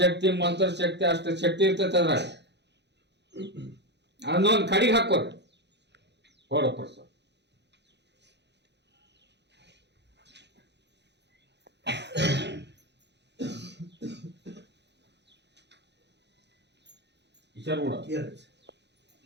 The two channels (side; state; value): left; late; 0.50 ms